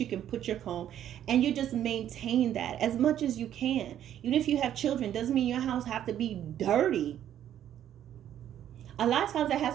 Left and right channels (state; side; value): quieter; left; 10.8 dB